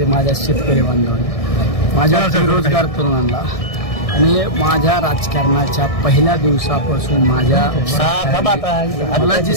माझ्या शेतकरी बांधवांना, माझ्या बेरोजगार तरुणांना आणि माझ्या राजकारणाच्या पहिल्या दिवसापासून मला जी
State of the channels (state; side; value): late; right; 1.6 ms